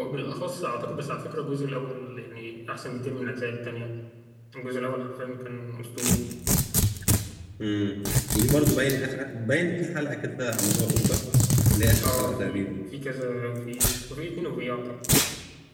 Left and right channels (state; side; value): identical; both; correlation 1.00